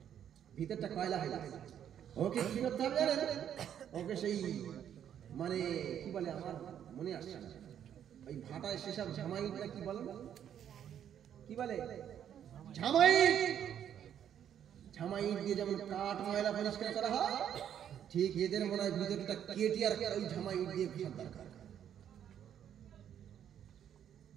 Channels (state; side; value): quieter; left; 9.6 dB